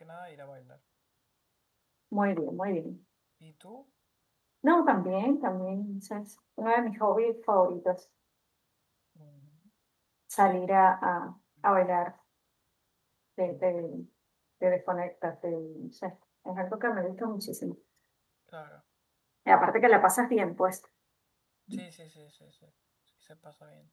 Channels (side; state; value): both; identical; correlation 1.00